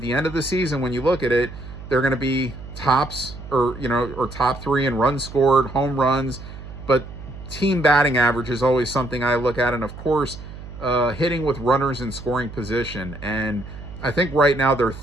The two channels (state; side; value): noise; right; hum, 13 dB below the sound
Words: the end of the season, when you look at it, they're going to be tops or top 3 in runs scored, home runs, but team batting average is always something I look at, and of course, hitting with runners in scoring position. And I think right now they're